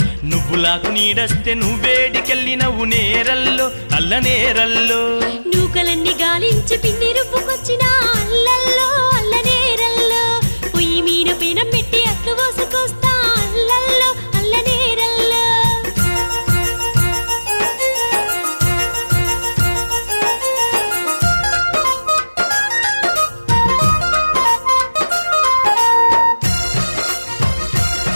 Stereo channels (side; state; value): both; inverted; correlation -1.00